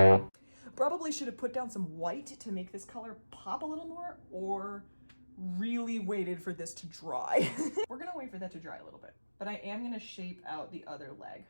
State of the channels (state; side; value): inverted; both; correlation -1.00